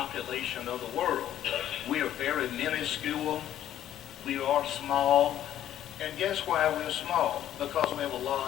of the world. We are very minuscule. We are small. And guess why we're small? Because we have a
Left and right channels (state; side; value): quieter; right; 11.6 dB